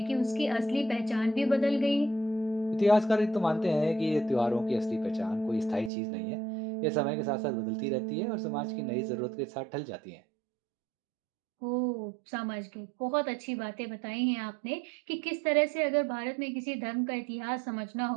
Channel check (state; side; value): drops out; left; at 5.9 s